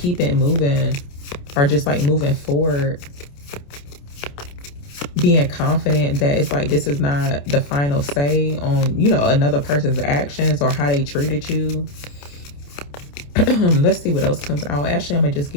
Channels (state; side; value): late; right; 28 ms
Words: it moving, or just like moving forward, being confident that it's like this is not the final say on, you know, another person's actions or how they treated you. Let's see what else comes out. Actually, I'm gonna just